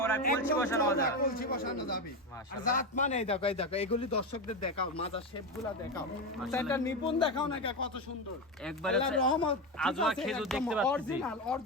কলসি একদম বসানো মাজা। চওড়া, কলসি বসানো যাবে। আর মাশাআল্লাহ। জাতমান এই দেখো এই দেখো, এগুলি দর্শকদের দেখাও, মাজা শেপগুলা দেখাও। সেটা নিপুণ দেখাও না কে, কত সুন্দর। একবারে আল্লাহর রহমত, ঠিক আজোয়া আছে, খেজুর একদম দেখতে পাচ্ছি। অরিজিনাল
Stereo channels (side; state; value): both; normal; correlation 0.15